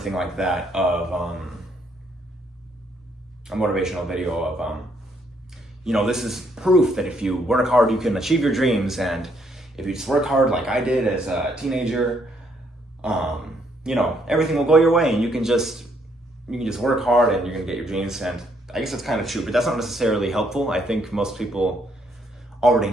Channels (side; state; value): both; normal; correlation 0.71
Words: like that of a motivational video of you know, this is proof that if you work hard you can achieve your dreams, and if you just work hard like I did as a teenager, you know, everything will go your way and you can just work hard and you're gonna get your dreams. And I guess that's kind of true, but that's not necessarily helpful. I think most people already